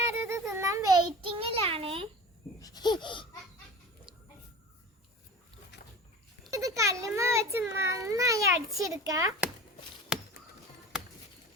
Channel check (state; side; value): normal; both; correlation 0.35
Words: ഇത് തിന്നാൻ വെയിറ്റിംഗിലാണ്. ഇത് കല്ലുമ്മ വെച്ച് നന്നായി അടിച്ചെടുക്ക.